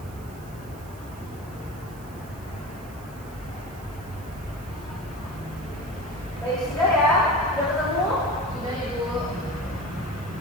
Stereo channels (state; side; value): noise; right; hiss, 22 dB below the sound